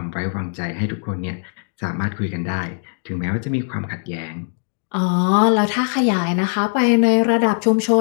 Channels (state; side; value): silent; right; 62 dB below the other